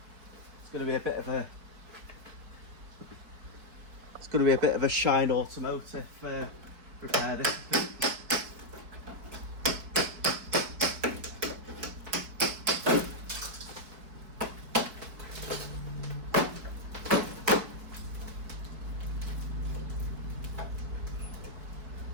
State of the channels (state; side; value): late; left; 4.6 ms